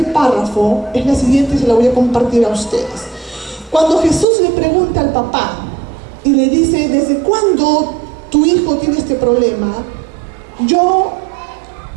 párrafo es la siguiente y se la voy a compartir a ustedes. Cuando Jesús le pregunta al papá y le dice: ¿desde cuándo tu hijo tiene este problema?, yo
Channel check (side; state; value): left; drops out; at 4.2 s